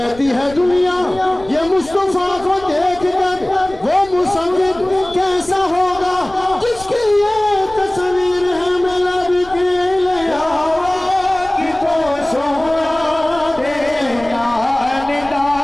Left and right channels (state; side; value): noise; left; rumble, 19 dB below the sound